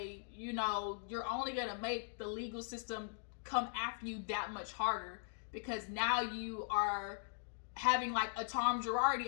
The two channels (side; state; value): right; silent; digital silence